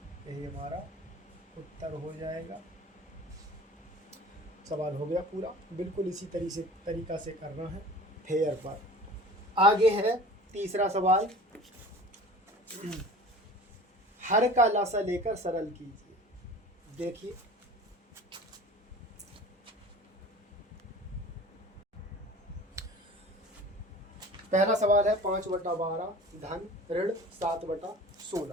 यही हमारा उत्तर हो जाएगा। सवाल हो गया पूरा, बिल्कुल इसी तरीका से करना है फेयर पर। आगे है तीसरा सवाल, हर का लासा लेकर सरल कीजिए। देखिए पहला सवाल है 5/12 धन ऋण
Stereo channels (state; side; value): normal; both; correlation 0.42